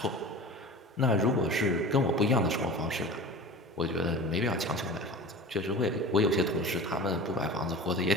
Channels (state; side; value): normal; both; correlation 0.35